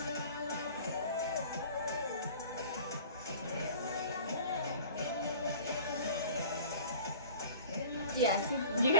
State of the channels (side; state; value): both; inverted; correlation -0.44